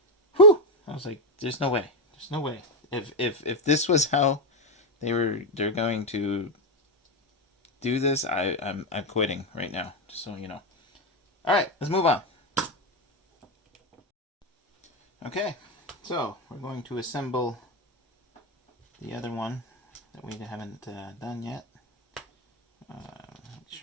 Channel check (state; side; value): normal; both; correlation 0.07